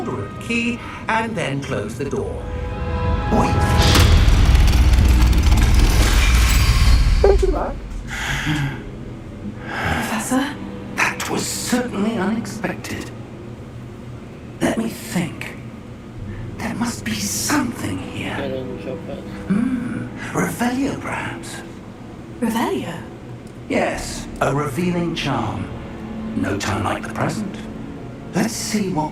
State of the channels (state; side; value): identical; both; correlation 1.00